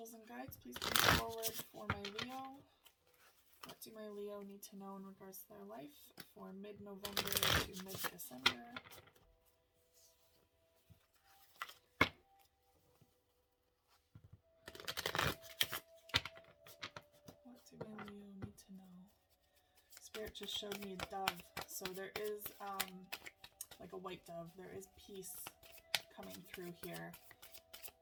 and guides, please come forward for my Leo. What do my Leo need to know in regards to their life for mid-November to mid-December? What do my Leo need to know? Spirit just showed me a dove. So there is, like a white dove, there is peace coming through here.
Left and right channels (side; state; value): both; identical; correlation 1.00